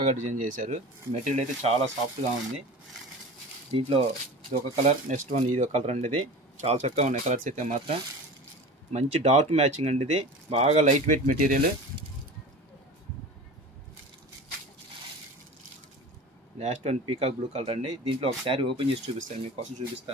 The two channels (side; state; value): both; normal; correlation 0.35